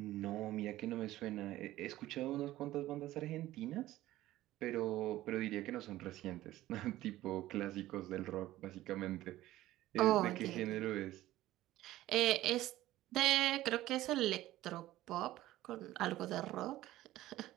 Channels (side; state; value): left; quieter; 15.5 dB